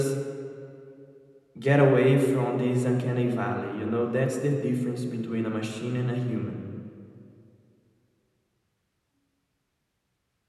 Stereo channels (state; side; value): identical; both; correlation 1.00